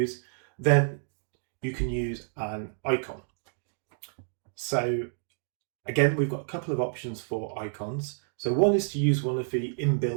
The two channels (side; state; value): left; silent; digital silence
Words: then you can use an icon. So again, we've got a couple of options for icons. So one is to use one of the